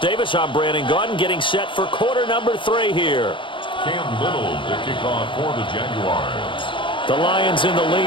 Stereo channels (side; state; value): right; late; 0.24 ms